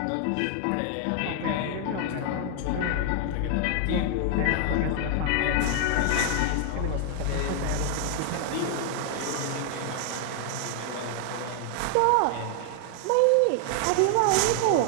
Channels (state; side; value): different; both; correlation 0.00